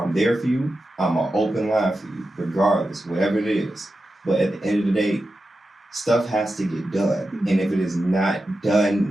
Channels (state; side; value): normal; both; correlation 0.91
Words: there for you. I'm an open line for you, regardless, whatever it is. But at the end of the day, stuff has to get done. And if it is not